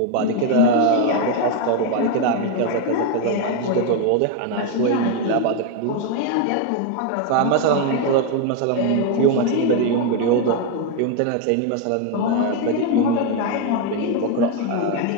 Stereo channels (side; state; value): both; different; correlation 0.02